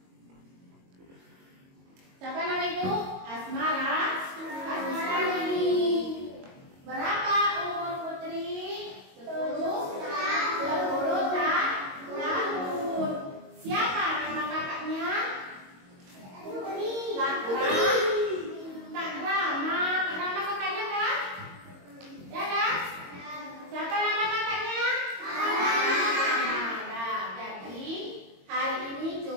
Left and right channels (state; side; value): late; left; 22 ms